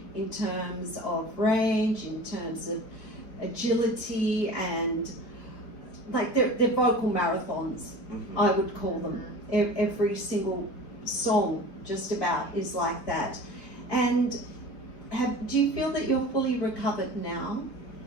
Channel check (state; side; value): late; right; 4.3 ms